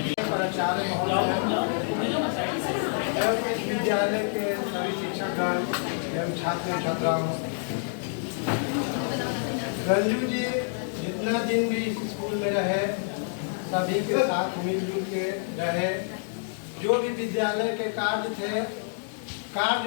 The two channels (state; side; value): silent; right; digital silence